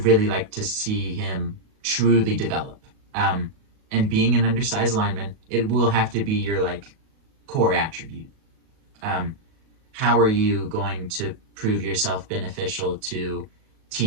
really like to see him truly develop. And being an undersized lineman, it will have to be your like core attribute. How are you going to prove yourself beneficial to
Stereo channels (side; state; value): left; late; 37 ms